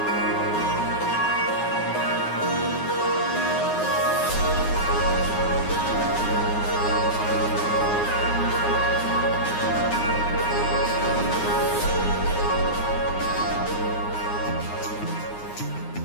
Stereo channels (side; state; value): right; late; 9.6 ms